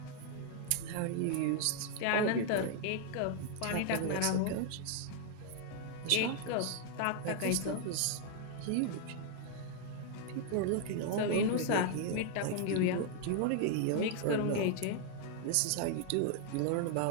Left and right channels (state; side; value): different; both; correlation 0.00